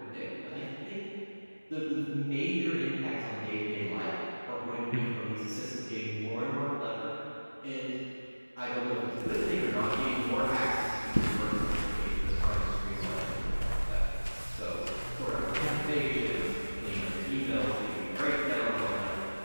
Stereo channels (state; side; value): inverted; both; correlation -1.00